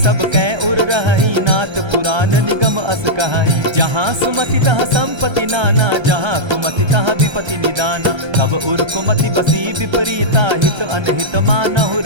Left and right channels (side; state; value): left; late; 1.3 ms